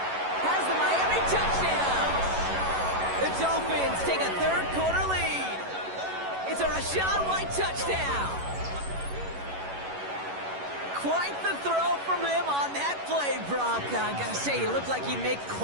the Miami touchdown. The Dolphins take a 3rd quarter lead. It's a Rachaad White touchdown. Quite the throw from him on that play, Brock. I gotta say, he looked like he'd make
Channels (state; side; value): late; left; 11 ms